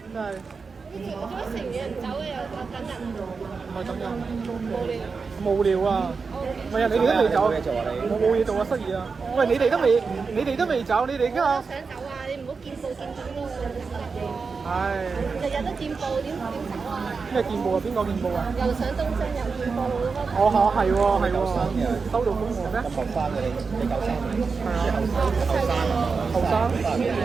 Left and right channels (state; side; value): quieter; left; 4.9 dB